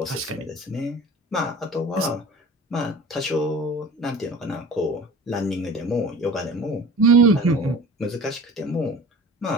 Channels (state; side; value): normal; both; correlation 0.41